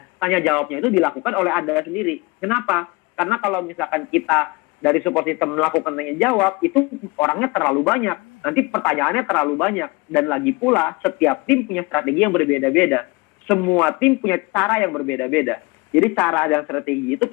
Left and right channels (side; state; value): right; quieter; 25.4 dB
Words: tanya jawabnya itu dilakukan oleh Anda sendiri. Kenapa? Karena kalau misalkan kita dari support system melakukan tanya jawab, itu orangnya terlalu banyak. Nanti pertanyaannya terlalu banyak. Dan lagi pula, setiap tim punya strategi yang berbeda-beda. Semua tim punya cara yang berbeda-beda. Jadi cara dan strategi itu